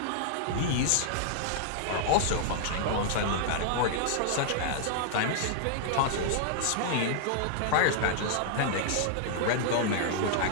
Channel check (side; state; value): both; different; correlation -0.01